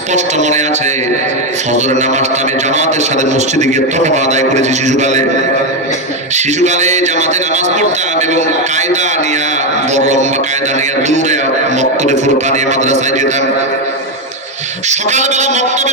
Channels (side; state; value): both; normal; correlation 0.08